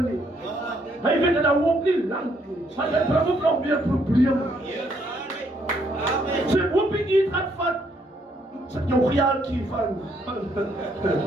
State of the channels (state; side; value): normal; both; correlation 0.70